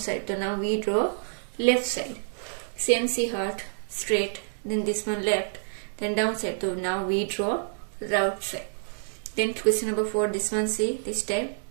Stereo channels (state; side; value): silent; left; digital silence